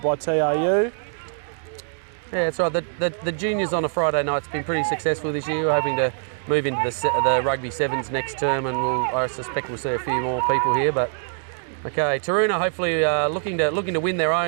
by TRU. Yeah, that's right. The juniors on a Friday night's been pretty successful this year. We're hoping to move into the rugby sevens next term, and I suspect we'll see a few more people here. But okay, Taroona hopefully looking to win their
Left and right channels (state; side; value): silent; left; digital silence